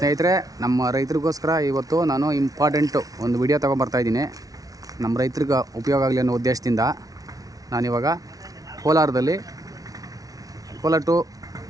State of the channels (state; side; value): late; left; 0.18 ms